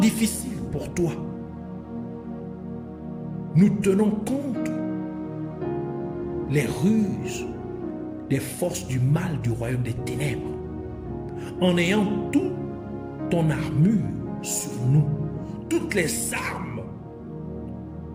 pour toi. Nous tenons compte les ruses des forces du mal du royaume des ténèbres, en ayant toute ton armure sur nous, toutes les armes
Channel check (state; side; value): identical; both; correlation 1.00